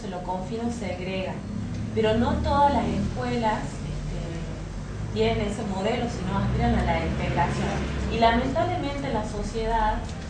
lo confina o segrega, pero no todas las escuelas tienen ese modelo, sino aspiran a la integración. Y lamentablemente en la sociedad,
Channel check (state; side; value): identical; both; correlation 1.00